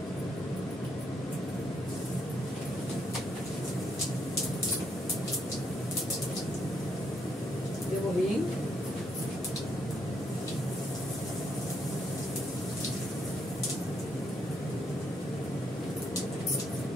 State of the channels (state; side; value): normal; both; correlation 0.75